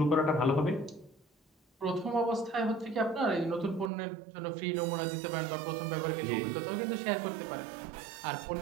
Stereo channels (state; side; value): drops out; left; at 3.9 s